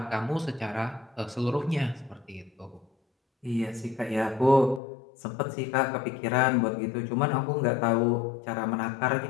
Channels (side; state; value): right; drops out; at 4.8 s